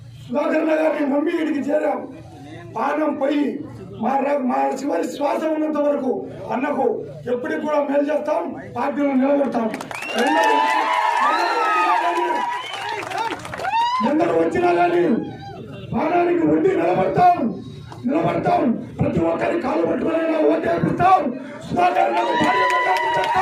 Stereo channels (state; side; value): identical; both; correlation 1.00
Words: సుధాకర్ గారిని నమ్మి ఇడికి చేరాం, పానం పోయి మా చివరి శ్వాస ఉన్నంత వరకు అన్నకు ఎప్పటికి కూడా మేలు చేస్తాం, పార్టీలో నిలబెడతాం. ఎందరూ వచ్చినా కానీ ప్రాణానికి ఉండి నిలబడతాం. ప్రతి ఒక్కరి కాలు పట్టుకునైనా ఓటేపిస్తాం. సుధాకర్